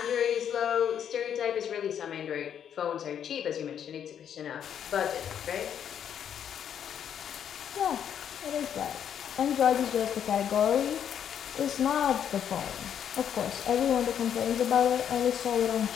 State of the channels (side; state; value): right; quieter; 8.9 dB